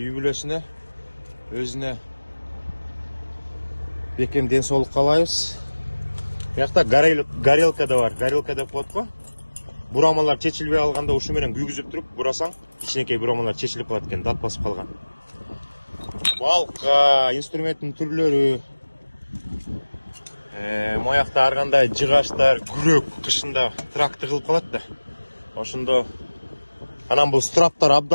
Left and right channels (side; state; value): both; inverted; correlation -1.00